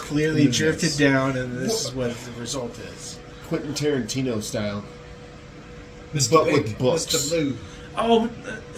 drifted down, and this is what the result is. Quentin Tarantino style. Mr. But Pink, with books. Mr. Blue. Oh,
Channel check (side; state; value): both; identical; correlation 1.00